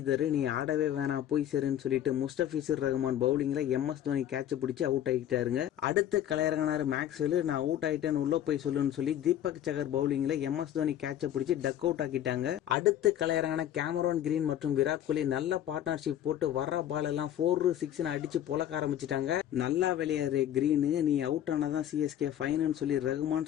நீ ஆடவே வேணாம் போய் சரின்னு சொல்லிட்டு முஸ்தபிசர் ரஹ்மான் பவுலிங்ல எம்எஸ் தோனி கேட்ச் பிடிச்சு அவுட் ஆகிட்டாருங்க. அடுத்து கலையரங்கனாரு மேக்ஸ்வெல் நான் அவுட் ஆயிட்டேன்னு உள்ள போய் சொல்லுன்னு சொல்லி தீபக் சகர் பவுலிங்ல எம்எஸ் தோனி கேட்ச பிடிச்சி டக் அவுட் ஆக்கிட்டாங்க. அடுத்து கலையரங்கன கேமரோன் கிரீன் மற்றும் விராட் கோலி நல்ல பார்ட்னர்ஷிப் போட்டு வர பால் எல்லாம் 4-6 அடிச்சு பொலக்க ஆரம்பிச்சிட்டாங்க. நல்லா விளையாடுற கிரீன் நீ அவுட் ஆனாதான் சிஎஸ்கே ஃபைனல் சொல்லி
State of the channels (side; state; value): right; quieter; 11.2 dB